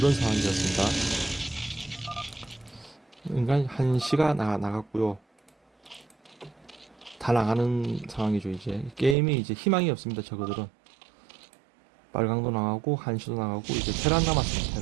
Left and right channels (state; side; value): drops out; left; at 9.2 s